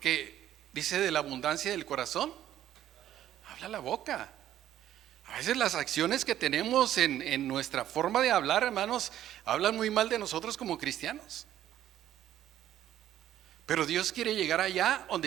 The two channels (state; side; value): quieter; left; 12.1 dB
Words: dice, de la abundancia del corazón habla la boca. A veces las acciones que tenemos en nuestra forma de hablar, hermanos, hablan muy mal de nosotros como cristianos. Pero Dios quiere llegar allá donde